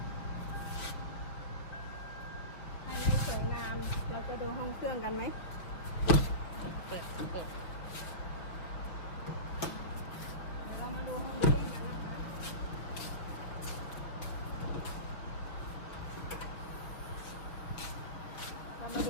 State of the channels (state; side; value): late; right; 5.9 ms